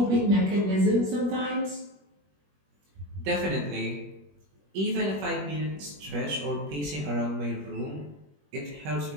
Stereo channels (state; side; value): late; left; 21 ms